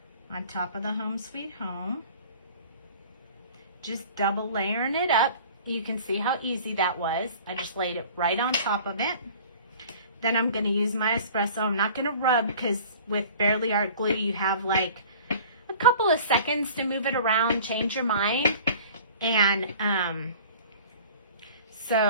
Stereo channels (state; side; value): inverted; both; correlation -0.46